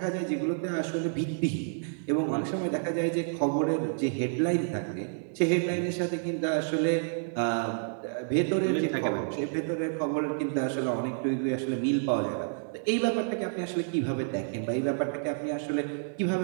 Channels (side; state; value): left; silent; digital silence